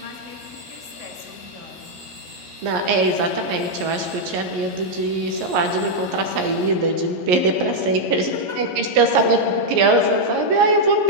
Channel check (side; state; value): left; late; 11 ms